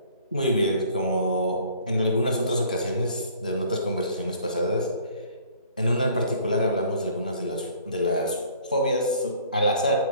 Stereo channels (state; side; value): inverted; both; correlation -0.54